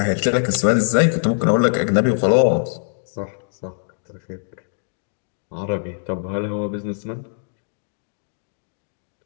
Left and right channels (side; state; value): right; silent; digital silence